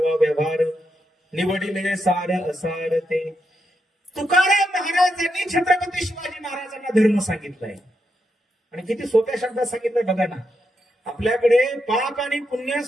व्यवहार, निवडिले सार असार ते. तुकाराम महाराजांनी छत्रपती शिवाजी महाराजांना धर्म सांगितलाय आणि किती सोप्या शब्दात सांगितलंय बघा ना. आपल्याकडे पाप आणि पुण्य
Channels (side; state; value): both; normal; correlation 0.83